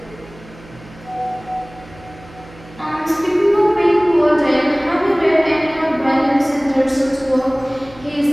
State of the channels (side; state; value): right; noise; hum, 21 dB below the sound